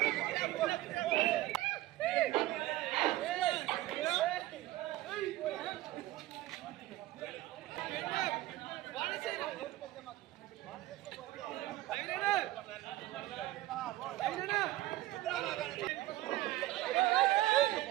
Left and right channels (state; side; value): quieter; left; 16.4 dB